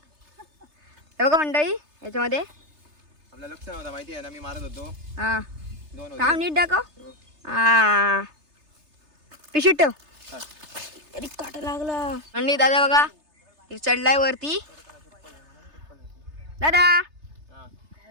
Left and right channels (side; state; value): left; late; 3.3 ms